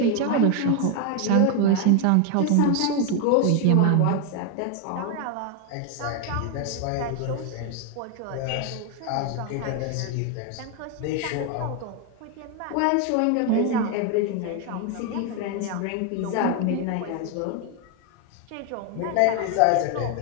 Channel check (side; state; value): both; different; correlation 0.01